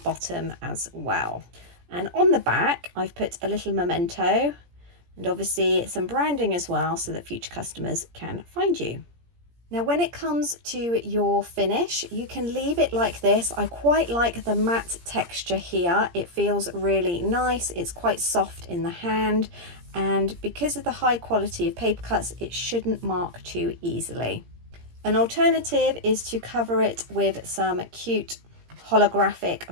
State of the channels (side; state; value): left; late; 17 ms